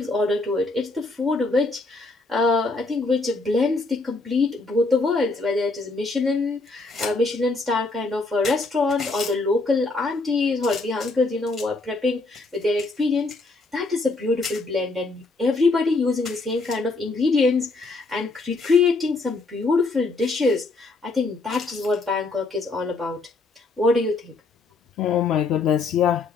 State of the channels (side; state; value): right; quieter; 3.5 dB